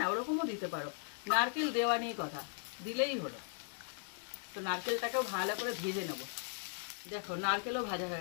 ওরকমও দিতে পারো। নারকেল দেওয়া নিয়ে কথা, দিলেই হলো। তো নারকেলটাকেও ভালো করে ভেজে নেব। দেখো নারকেলও ভাজা হয়ে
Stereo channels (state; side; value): silent; right; digital silence